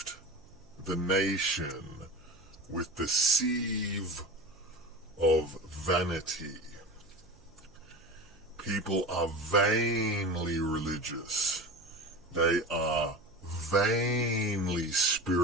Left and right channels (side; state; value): right; noise; hum, 28 dB below the sound